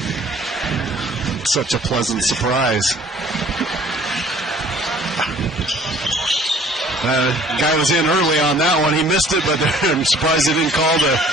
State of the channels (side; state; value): both; normal; correlation 0.54